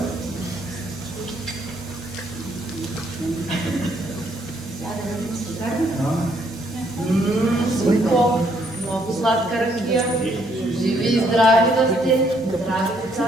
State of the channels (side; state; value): both; normal; correlation 0.69